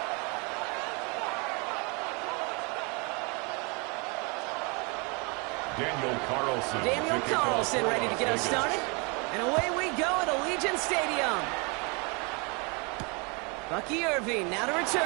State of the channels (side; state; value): left; quieter; 31.3 dB